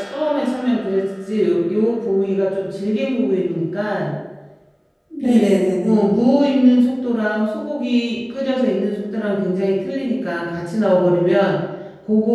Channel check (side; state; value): both; identical; correlation 1.00